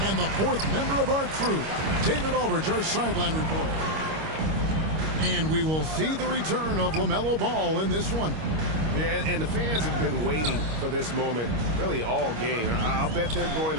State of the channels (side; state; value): left; late; 25 ms